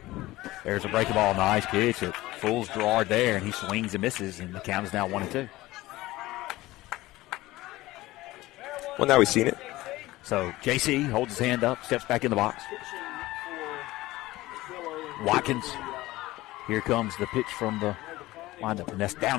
There's a breaking ball, nice pitch. It fools Gerard there, and he swings and misses, and the count is now 1-2. Well, now we've seen it. So JC holds his hand up, steps back in the box. Watkins, here comes the pitch from the windup, and that's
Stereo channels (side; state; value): right; quieter; 18.1 dB